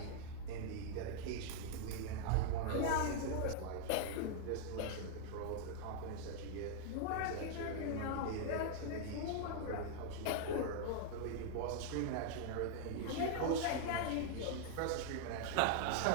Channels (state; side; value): different; both; correlation -0.01